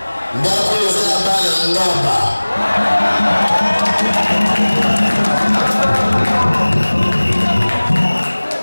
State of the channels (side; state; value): both; inverted; correlation -1.00